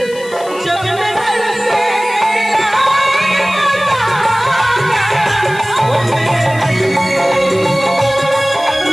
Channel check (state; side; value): noise; left; hiss, 18 dB below the sound